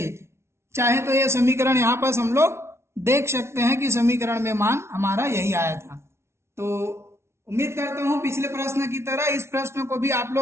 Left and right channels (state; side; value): late; left; 0.13 ms